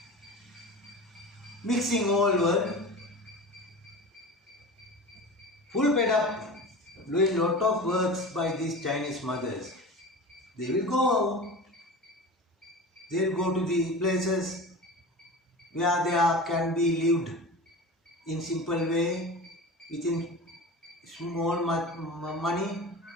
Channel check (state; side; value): normal; both; correlation 0.32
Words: Mixing all world. Full fed up doing lot of works by these Chinese mothers. They will go. They will go to the places where there can be lived in simple way within small money.